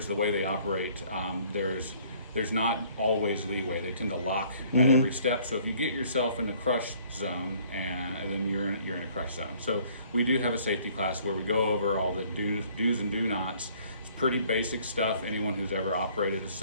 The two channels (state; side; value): inverted; both; correlation -0.58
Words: the way they operate, there's not always leeway. They tend to lock at every step. So if you get yourself in a crush zone, and then you're in a crush zone. So we do have a safety class where we go over all the do's and do nots. It's pretty basic stuff. Anyone who's ever operated a